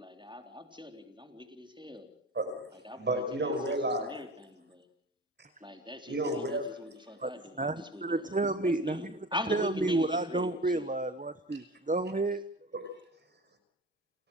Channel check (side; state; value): both; normal; correlation 0.33